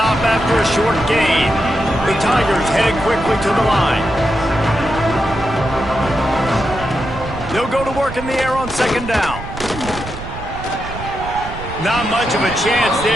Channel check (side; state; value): right; noise; rumble, 11 dB below the sound